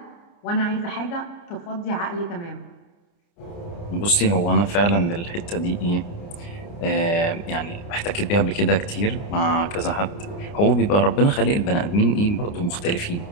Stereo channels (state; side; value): late; right; 29 ms